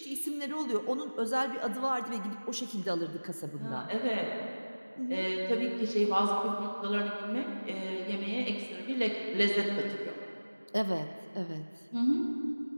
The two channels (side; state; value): both; inverted; correlation -1.00